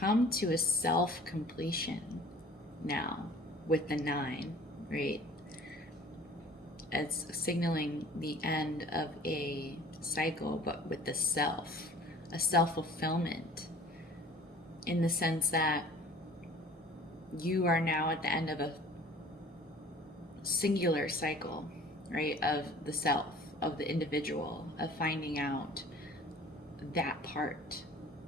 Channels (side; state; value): both; normal; correlation 0.48